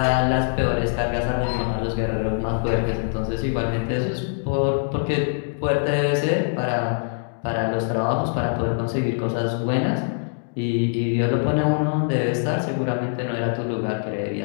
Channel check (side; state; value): right; silent; digital silence